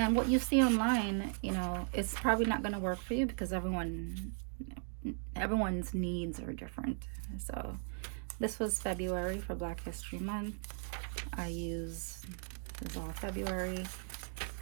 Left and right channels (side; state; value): left; silent; 53 dB below the other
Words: what you see online, you know, it's probably not going to work for you because everyone's needs are different. So this was February for Black History Month. This is all February.